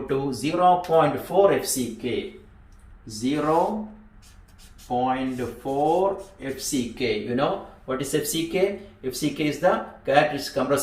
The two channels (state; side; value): identical; both; correlation 1.00